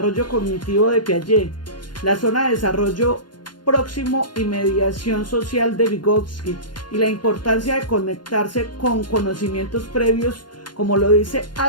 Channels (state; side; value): late; right; 0.71 ms